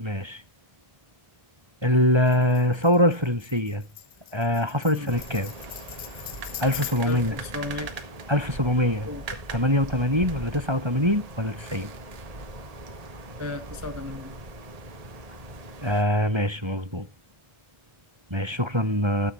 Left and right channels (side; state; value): left; late; 1.3 ms